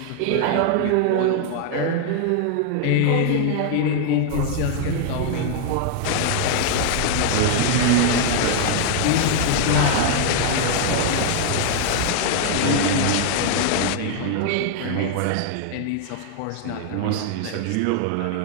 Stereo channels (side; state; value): both; different; correlation 0.00